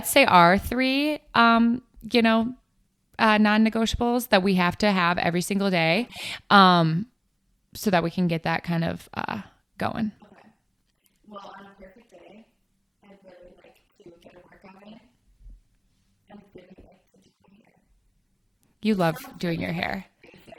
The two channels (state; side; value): identical; both; correlation 1.00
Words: say our 3 non-negotiables that we have to have every single day. Okay. So that we can get that kind of going. Okay. Well, on a perfect day, I'd really like to get a workout in. I really like to do my hair. This sounds really like